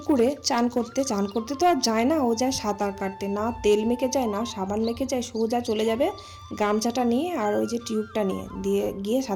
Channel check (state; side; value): identical; both; correlation 1.00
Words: চান করতে, চান করতে তো আর যায় না, ও যায় সাঁতার কাটতে। না তেল মেখে যায়, না সাবান মেখে যায়, সোজা চলে যাবে গামছাটা নিয়ে আর ওই যে টিউবটা নিয়ে দিয়ে গিয়ে